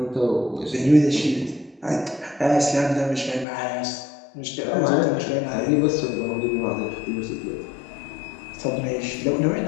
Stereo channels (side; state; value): right; drops out; at 3.5 s